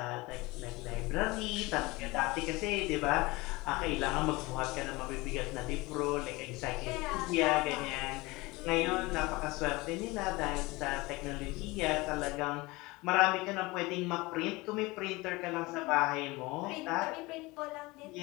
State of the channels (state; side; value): quieter; right; 22.5 dB